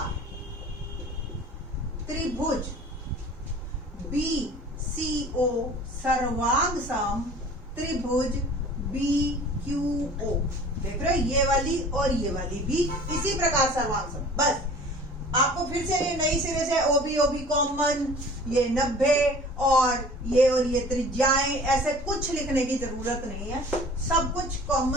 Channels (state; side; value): normal; both; correlation 0.45